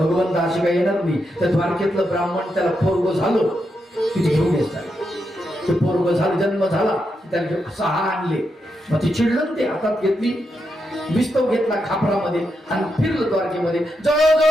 अशी काही येणार नाही. त्या द्वारकेतलं ब्राह्मण त्याला पोरग झालं तिथे घेऊन येतात. ते पोरग झालं जन्म झाला त्याला घेऊन 6 आणले. मग ती चिडलं ते हातात घेतली विस्तव घेतला खापरामध्ये आणि फिरलं द्वारकेमध्ये.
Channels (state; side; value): normal; both; correlation 0.84